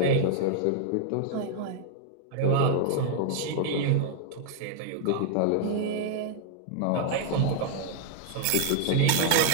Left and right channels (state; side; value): different; both; correlation 0.00